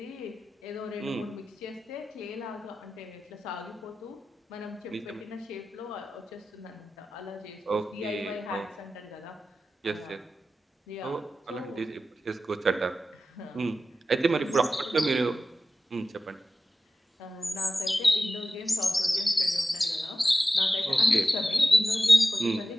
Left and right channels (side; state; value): both; normal; correlation 0.93